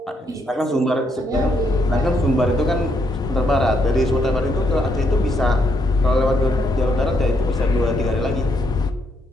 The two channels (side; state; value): both; normal; correlation 0.75